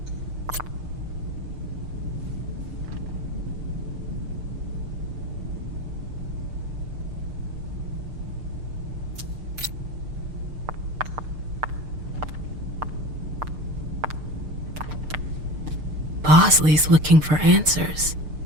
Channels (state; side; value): late; left; 6.6 ms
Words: Bosley's looking for answers.